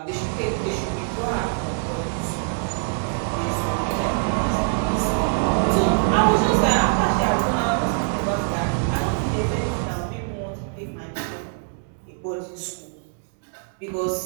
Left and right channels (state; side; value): silent; left; 63 dB below the other